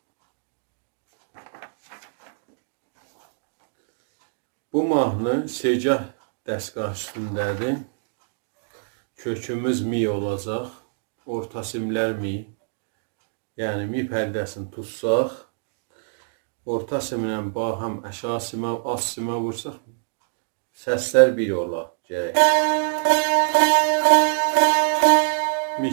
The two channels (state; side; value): silent; left; digital silence